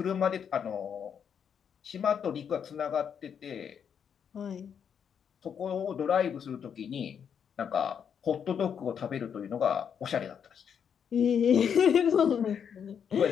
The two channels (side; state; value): right; quieter; 7.7 dB